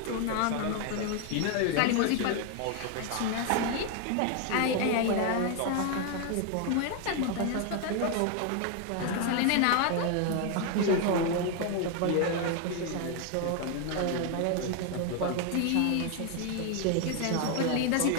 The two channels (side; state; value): both; different; correlation 0.01